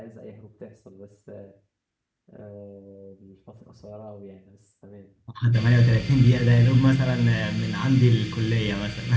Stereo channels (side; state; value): both; identical; correlation 1.00